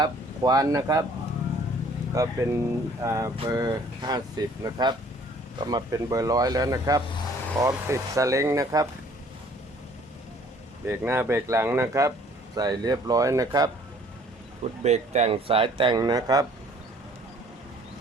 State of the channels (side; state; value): both; normal; correlation 0.56